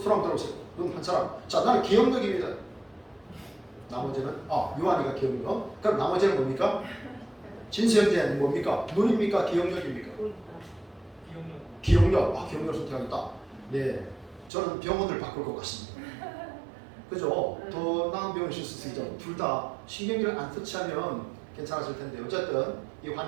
들어보세요. 눈 한 사람. 자 나는 기억력입니다. 나머지는 요한이가 기억력. 그럼 나머지는 뭡니까? 진수현재는 뭡니까? 눈입니까? 기억력입니까? 기억력. 기억력을 선택하겠다. 네, 저는 병원을 바꿀 것 같습니다. 그죠? 더 나은 병원을 쓸 수 있죠. 둘 다 신경기를 안 터치하면 괜찮았을 텐데 어쨌든 이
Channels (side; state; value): left; drops out; at 14.5 s